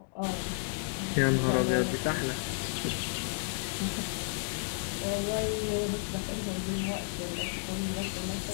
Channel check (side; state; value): right; silent; digital silence